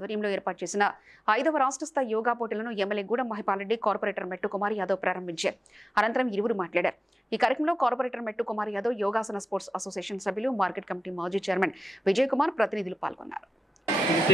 ఏర్పాటు చేసిన 5వ రాష్ట్ర స్థాయి యోగా పోటీలను ఎమ్మెల్యే గూడెం మహిపాల్ రెడ్డి, కార్పొరేటర్ మెట్టు కుమార్ యాదవ్ ప్రారంభించారు. అనంతరం ఇరువురు మాట్లాడారు. ఈ కార్యక్రమంలో కార్పొరేటర్ మెట్టు కుమార్ యాదవ్, యోగాసన స్పోర్ట్స్ అసోసియేషన్ సభ్యులు, మార్కెట్ కమిటీ మాజీ చైర్మన్ విజయ్ కుమార్ ప్రతినిధులు పాల్గొన్నారు.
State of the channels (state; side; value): normal; both; correlation 0.93